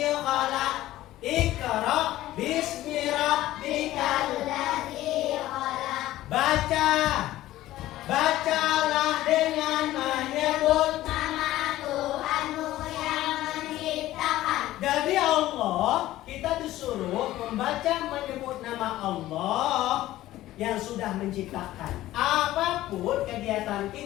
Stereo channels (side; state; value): right; quieter; 15.2 dB